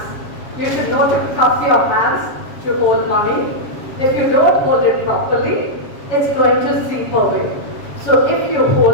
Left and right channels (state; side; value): late; right; 7.3 ms